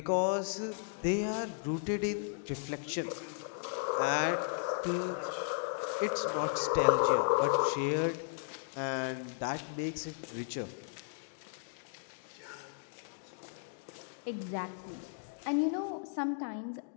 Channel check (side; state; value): right; silent; digital silence